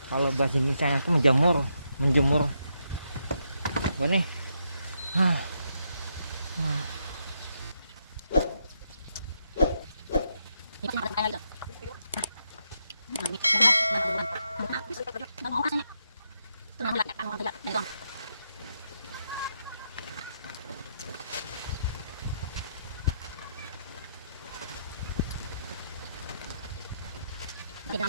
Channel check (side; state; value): both; inverted; correlation -0.80